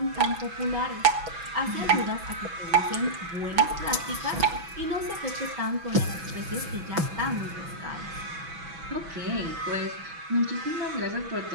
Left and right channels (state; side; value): late; left; 6.1 ms